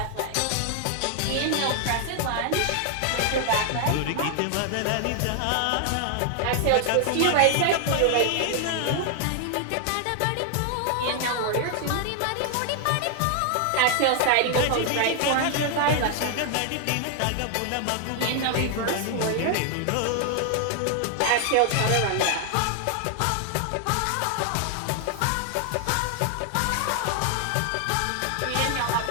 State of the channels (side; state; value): both; different; correlation 0.00